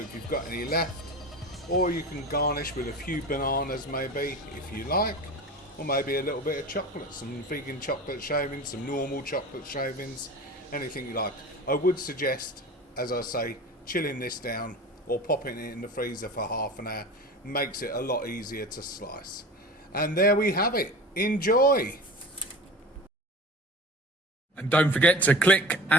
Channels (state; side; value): normal; both; correlation 0.35